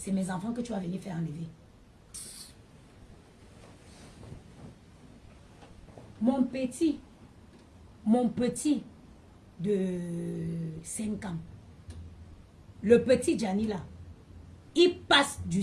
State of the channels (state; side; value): identical; both; correlation 1.00